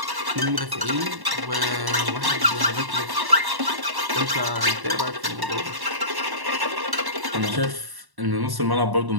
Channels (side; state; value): left; late; 1.1 ms